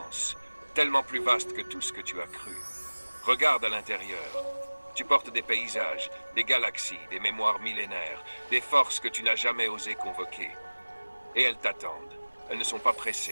tellement plus vaste que tout ce que tu as cru. Regarde à l'intérieur. Tu portes des paysages, des galaxies, des mémoires millénaires, des forces que tu n'as jamais osé convoquer. Et elles t'attendent. Elles ne sont pas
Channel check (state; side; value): inverted; both; correlation -1.00